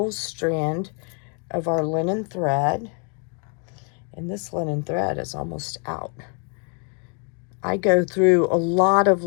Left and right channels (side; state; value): right; quieter; 39.8 dB